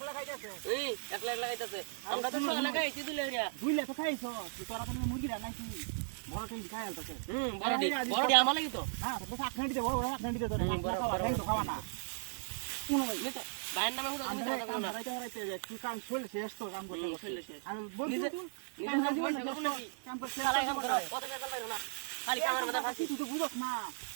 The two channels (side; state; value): left; silent; digital silence